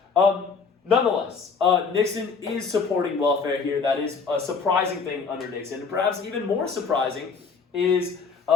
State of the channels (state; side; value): quieter; right; 5.2 dB